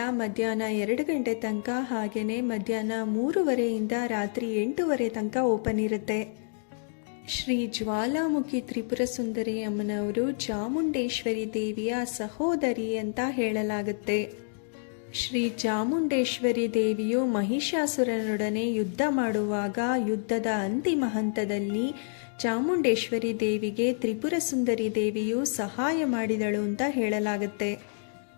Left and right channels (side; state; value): right; silent; digital silence